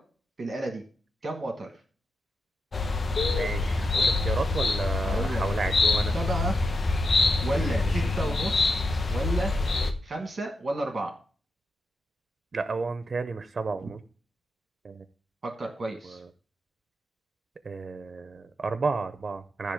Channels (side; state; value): both; normal; correlation 0.86